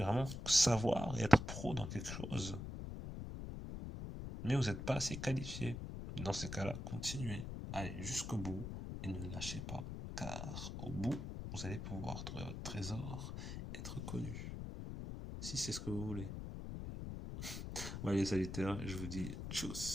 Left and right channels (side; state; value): left; noise; rumble, 6 dB below the sound